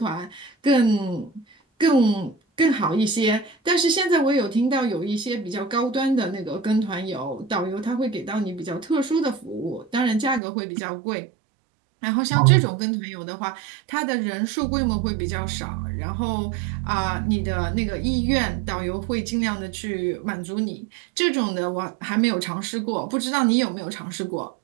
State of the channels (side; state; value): left; drops out; at 10.4 s